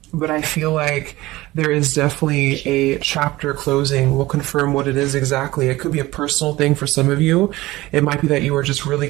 but I feel like there is definitely a chapter closing. We'll confirm what it is exactly. It could be a personal thing for some of you. It might be that you are just really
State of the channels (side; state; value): left; quieter; 18.6 dB